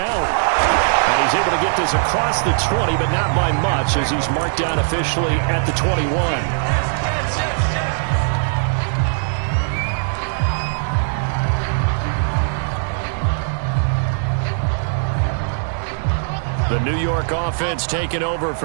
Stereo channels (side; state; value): left; silent; digital silence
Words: And he's able to get this across the 20, but not by much, as he's marked down officially at the 21. The New York offense taking over